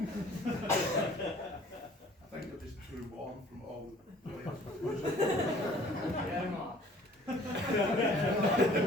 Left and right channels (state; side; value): normal; both; correlation 0.52